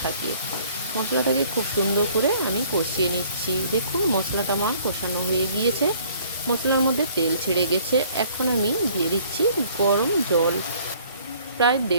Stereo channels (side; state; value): both; inverted; correlation -0.57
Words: থাকে। মশলাটাকে খুব সুন্দর করে আমি কষিয়ে নিচ্ছি। দেখুন মশলাটা আমার কষানো হয়ে গিয়েছে, মশলার মধ্যে তেল ছেড়ে গেছে। এখন আমি দিয়ে দিচ্ছি গরম জল, প্রায়